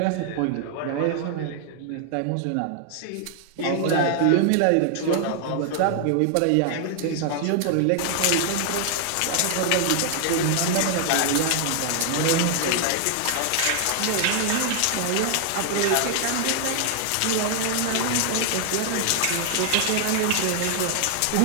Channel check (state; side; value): different; both; correlation 0.00